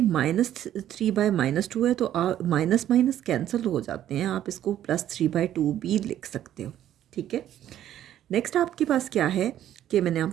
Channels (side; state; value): left; quieter; 11.7 dB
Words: है, तो माइनस माइनस कैंसिल हो जाते हैं। आप इसको +3/2 भी लिख सकते हो, ठीक है। नेक्स्ट आपके पास क्या है कि मैंने